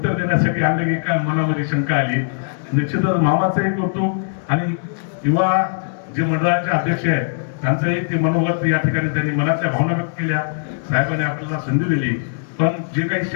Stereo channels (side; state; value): right; silent; digital silence